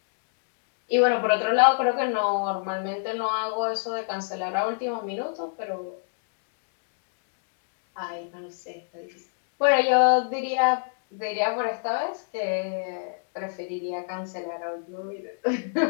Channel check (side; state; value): right; silent; digital silence